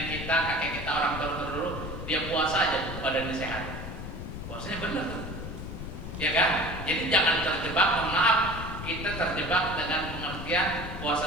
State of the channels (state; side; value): noise; left; rumble, 8 dB below the sound